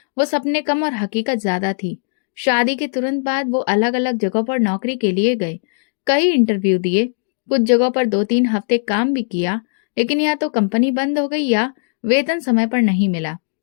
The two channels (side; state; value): right; silent; digital silence